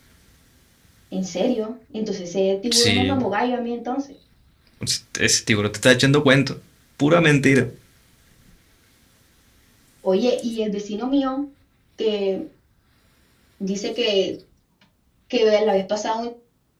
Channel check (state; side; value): identical; both; correlation 1.00